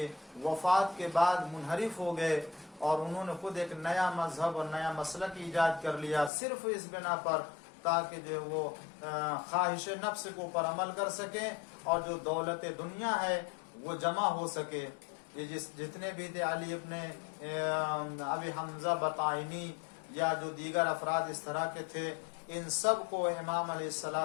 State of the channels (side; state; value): right; drops out; at 6.3 s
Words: وفات کے بعد منحرف ہو گئے، اور انہوں نے خود ایک نیا مذہب اور نیا مسلک ایجاد کر لیا، صرف اس بنا پر تاکہ جو وہ خواہش نفس کے اوپر عمل کر سکیں اور جو دولت دنیا ہے وہ جمع ہو سکے۔ یہ جتنے بھی تھے علی ابن ابی حمزہ بطائنی یا جو دیگر افراد اس طرح کے تھے، ان سب کو امام علیہ